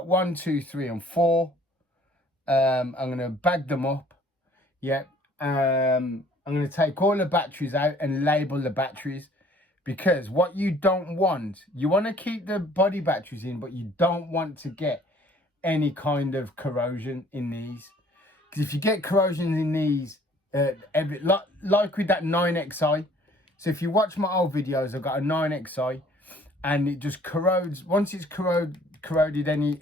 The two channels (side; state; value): both; normal; correlation 0.56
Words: 1, 2, 3 and 4. I'm going to bag them up. Yep. I'm going to take all the batteries out and label the batteries. Because what you don't want, you want to keep the body batteries in, but you don't want to get any kind of corrosion in these. Because if you get corrosion in these, like with that 9XI, so if you watch my old videos, I've got a 9XI, and it just corrodes. Once it's corroded